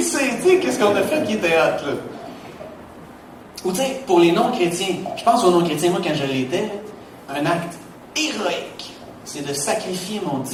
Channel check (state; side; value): identical; both; correlation 1.00